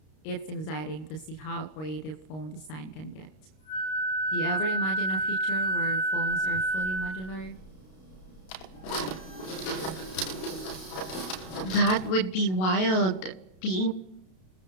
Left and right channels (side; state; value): right; late; 32 ms